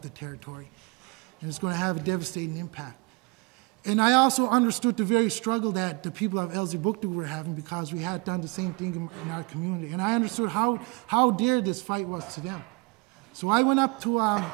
the territory, and it's going to have a devastating impact. And I also understood the very struggle that the people of Elsipogtog were having, because we had done the same thing in our community. And I understood how dear this fight was to them. So I went up to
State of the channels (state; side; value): quieter; left; 27.8 dB